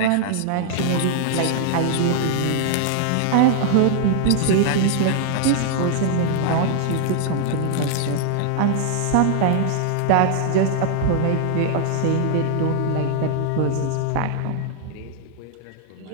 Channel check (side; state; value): both; different; correlation 0.00